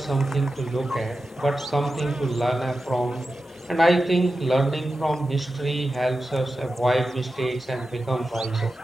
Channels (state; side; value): normal; both; correlation 0.92